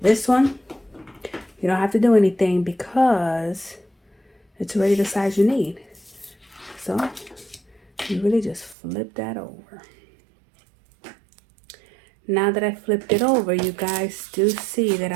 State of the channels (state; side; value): drops out; left; at 8.8 s